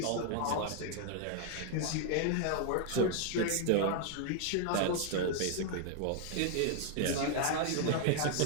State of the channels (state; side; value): different; both; correlation 0.00